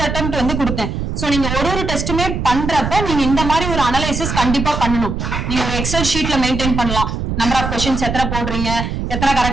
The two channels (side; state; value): right; noise; rumble, 3 dB below the sound